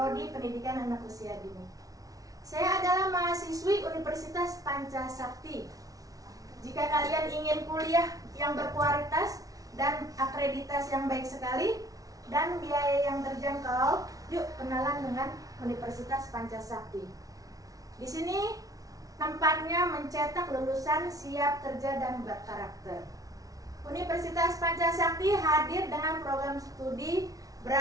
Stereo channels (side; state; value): left; late; 0.18 ms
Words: Pendidikan Anak Usia Dini. Saya adalah mahasiswi Universitas Pancasakti. Jika kalian ingin kuliah yang berkualitas dan akreditasi yang baik sekali dan biaya yang terjangkau, yuk kenalan dengan Universitas Pancasakti. Di sini tempatnya mencetak lulusan siap kerja dan berkarakter. Universitas Pancasakti hadir dengan program studi